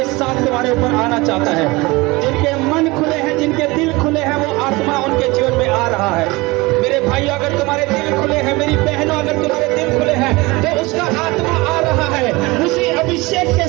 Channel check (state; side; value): quieter; left; 23.0 dB